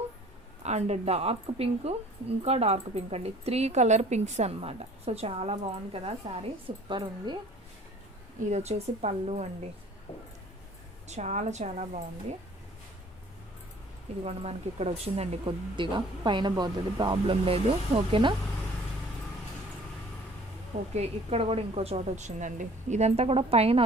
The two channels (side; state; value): both; normal; correlation 0.52